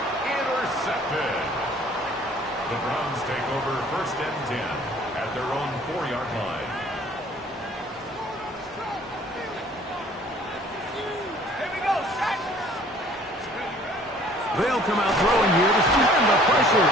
Intercepted. The Browns take over 1st and 10 at their own 4-yard line. They'll come out throwing here to stand the pressure.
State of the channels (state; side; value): normal; both; correlation 0.54